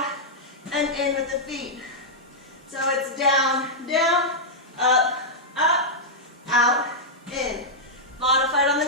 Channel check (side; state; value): both; normal; correlation -0.08